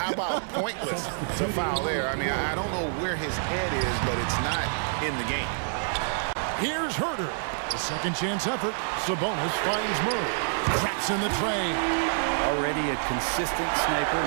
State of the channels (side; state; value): left; silent; 60 dB below the other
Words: about pointless to foul there? I mean, I don't know where his head is, but it's not in the game. Here's Herter. The second chance effort. Sabonis finds Murray. Traps in the tray. Already a consistent